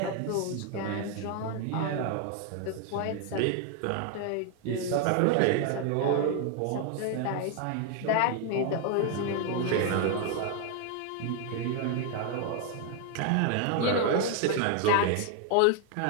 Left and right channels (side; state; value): both; different; correlation 0.01